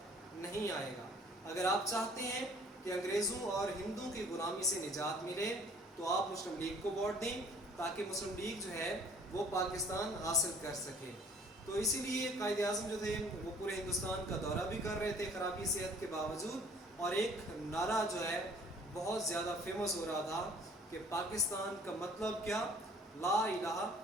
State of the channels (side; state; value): both; normal; correlation 0.54